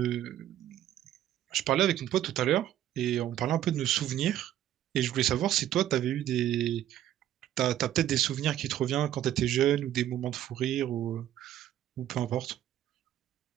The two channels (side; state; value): left; quieter; 12.1 dB